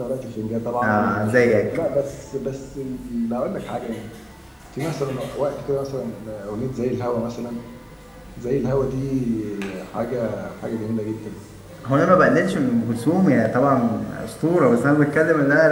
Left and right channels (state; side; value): identical; both; correlation 1.00